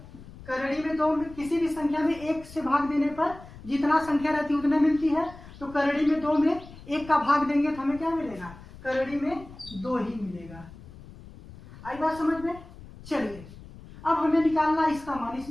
करड़ी में 2 में किसी भी संख्या में 1 से भाग देने पर जितना संख्या रहती है उतने मिलती है। तो करड़ी में 2 में 1 का भाग देंगे तो हमें क्या मिलेगा करड़ी में 2 ही मिलेगा। आई बात समझ में। चलिए अब हमें निकालना है इसका मान,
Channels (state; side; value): noise; left; rumble, 18 dB below the sound